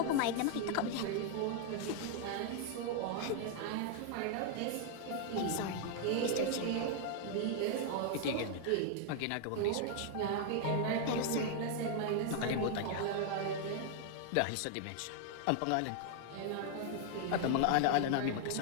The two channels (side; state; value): both; different; correlation 0.00